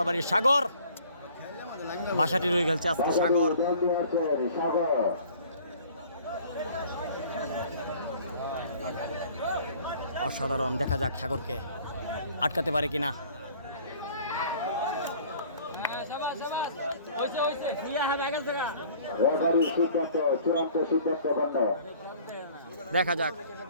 বাড়ির সাগর, বাসাটি রয়ে গেছে আজকে সাগর। সাগর অসাধারণ, দেখা যাক সাগরকে আটকাতে পারে কিনা। রেফারির সিদ্ধান্ত চূড়ান্ত সিদ্ধান্ত গণ্য। দেখা যাক,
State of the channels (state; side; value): inverted; both; correlation -0.51